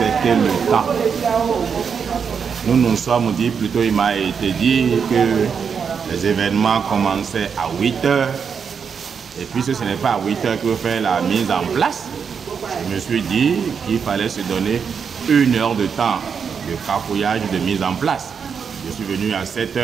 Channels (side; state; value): left; quieter; 6.5 dB